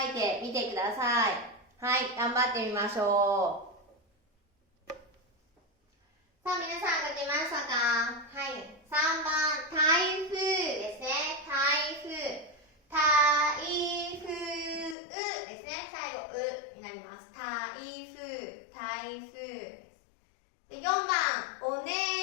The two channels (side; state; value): right; drops out; at 15.0 s